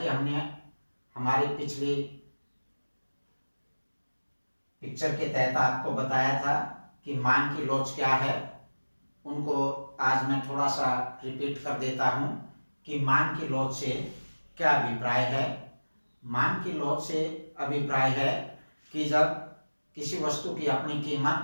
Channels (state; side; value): inverted; both; correlation -1.00